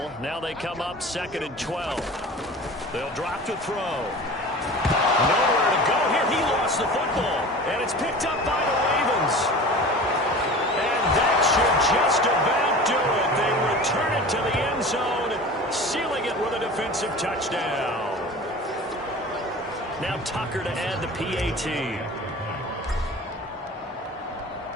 Now they come up 2nd and 12. They'll drop to throw. Nowhere to go here. He lost the football. And it's picked up by the Ravens. And that should just about do it. They return it to the end zone, sealing it with a defensive touchdown. Now Tucker to add the PAT.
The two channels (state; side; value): normal; both; correlation 0.37